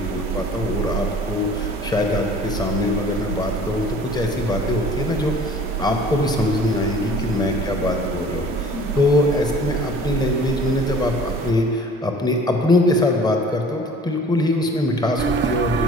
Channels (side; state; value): both; normal; correlation 0.48